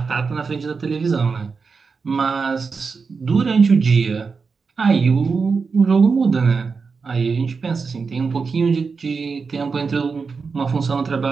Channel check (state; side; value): quieter; left; 5.0 dB